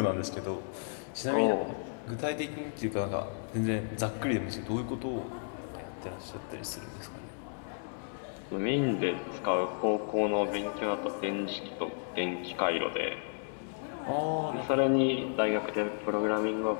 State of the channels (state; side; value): silent; right; digital silence